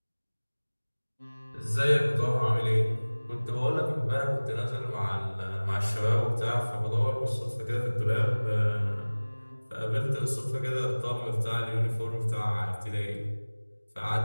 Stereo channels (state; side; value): inverted; both; correlation -1.00